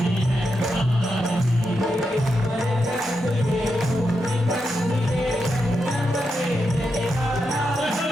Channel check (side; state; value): both; normal; correlation 0.85